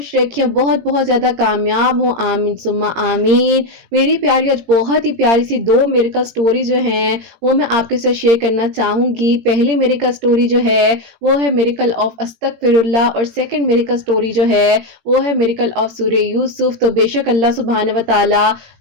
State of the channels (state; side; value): late; left; 17 ms